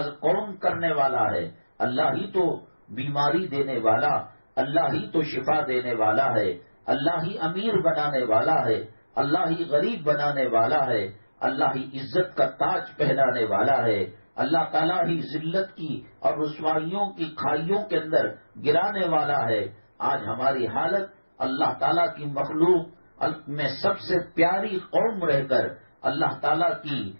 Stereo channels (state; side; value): inverted; both; correlation -1.00